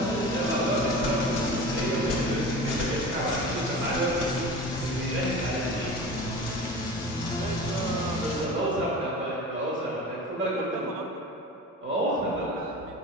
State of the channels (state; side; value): normal; both; correlation 0.35